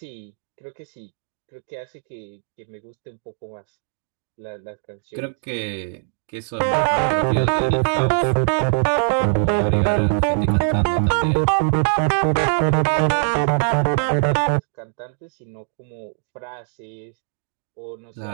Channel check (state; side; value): silent; left; digital silence